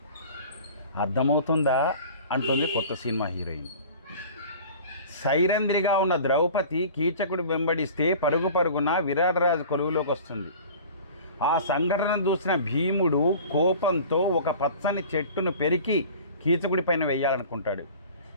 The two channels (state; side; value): inverted; both; correlation -0.42